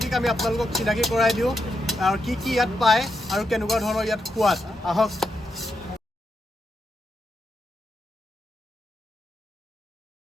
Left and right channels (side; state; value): both; normal; correlation 0.83